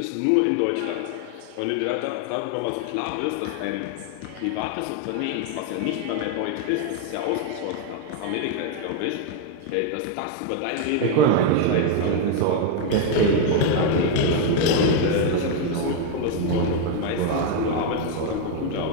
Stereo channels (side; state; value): both; different; correlation 0.01